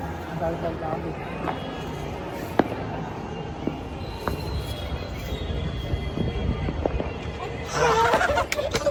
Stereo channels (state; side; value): identical; both; correlation 1.00